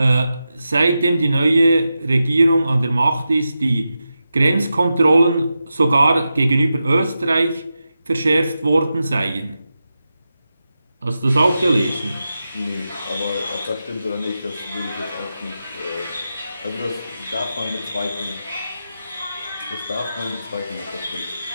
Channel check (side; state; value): both; inverted; correlation -0.90